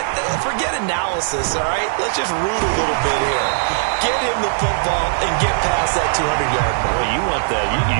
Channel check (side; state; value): left; silent; 65 dB below the other